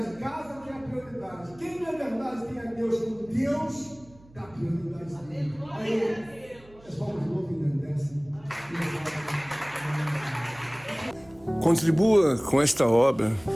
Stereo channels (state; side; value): noise; right; hum, 25 dB below the sound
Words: casa tem a prioridade. Quem na verdade tem a Deus como Deus, dá prioridade a Deus. Aí, as palmas de novo engrandecem. Contribua com esta obra,